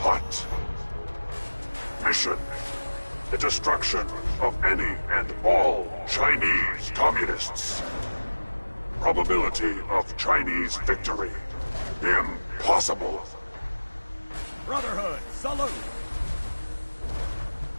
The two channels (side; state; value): both; inverted; correlation -1.00